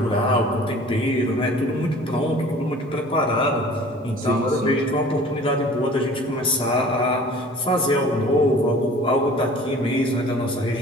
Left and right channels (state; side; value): normal; both; correlation 0.46